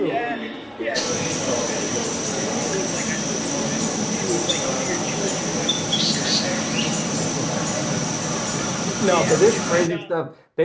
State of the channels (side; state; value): both; identical; correlation 1.00